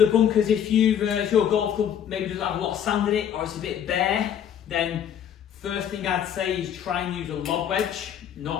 bunkers, if your golf club maybe doesn't have a lot of sand in it or it's a bit bare, then first thing I'd say is try and use a lob wedge,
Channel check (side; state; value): right; quieter; 9.2 dB